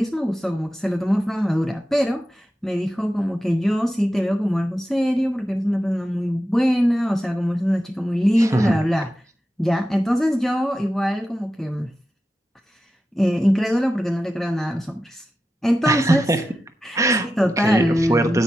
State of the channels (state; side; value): normal; both; correlation 0.91